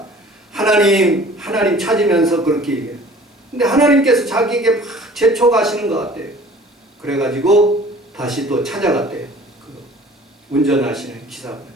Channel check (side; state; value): both; normal; correlation 0.48